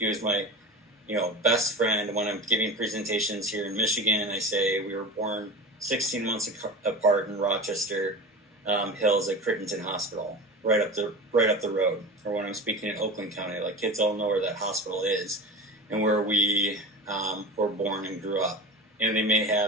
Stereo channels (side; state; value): both; normal; correlation 0.30